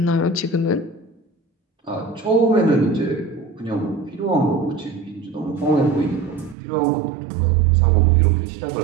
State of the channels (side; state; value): left; drops out; at 6.6 s